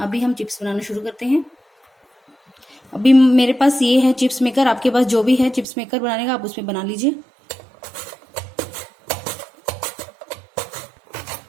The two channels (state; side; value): drops out; left; at 5.7 s